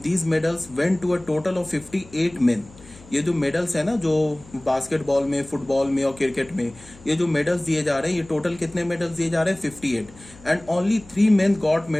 these medals went to a total of 58 men. ये जो मेडल्स है ना, जो बास्केटबॉल में, फुटबॉल में और क्रिकेट में ये जो मेडल्स दिए जा रहे हैं, ये टोटल कितने मेडल्स दिए जा रहे हैं, 58, and only 3 men got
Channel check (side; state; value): left; noise; hum, 22 dB below the sound